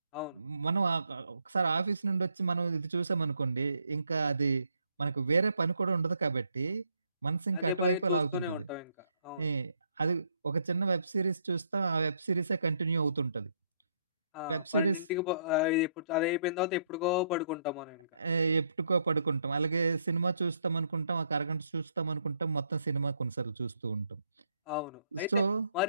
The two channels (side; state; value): both; inverted; correlation -0.71